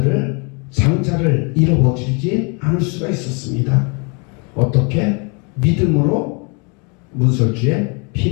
장자를 잃어버리지 않을 수가 있었습니다. 어떻게? 믿음으로 문설주에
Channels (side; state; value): right; quieter; 33.8 dB